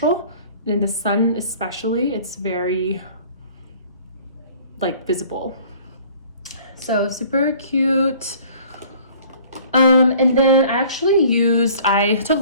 And in the sun especially, it's very like visible. So super cute. And then I took a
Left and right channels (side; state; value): both; inverted; correlation -0.51